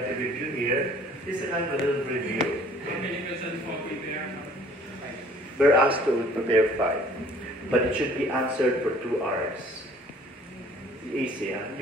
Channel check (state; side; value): normal; both; correlation 0.54